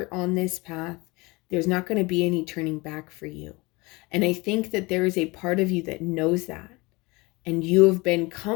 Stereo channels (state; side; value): quieter; right; 24.3 dB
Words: on this path, there's not going to be any turning back for you. And I think that there is a part of you that knows that, and you have been